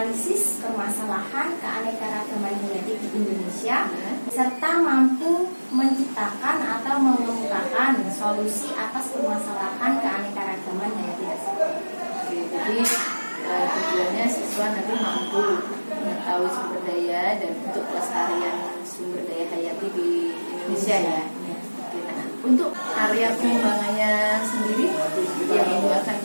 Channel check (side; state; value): both; inverted; correlation -1.00